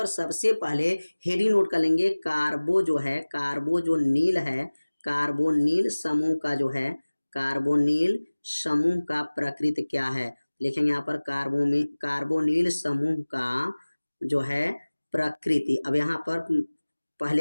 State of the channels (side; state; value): both; inverted; correlation -1.00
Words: सबसे पहले हेडिंग नोट कर लेंगे, कार्बो जो नील है, कार्बोनिल समूह का जो है, कार्बोनिल समूह का प्रकृति क्या है, लिखेंगे यहाँ पर कार्बोनिल समूह का जो है प्रकृति। अब यहाँ पर